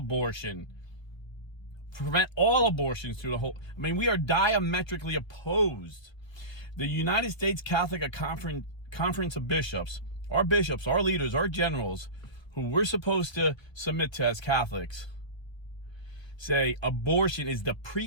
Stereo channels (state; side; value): late; right; 1.3 ms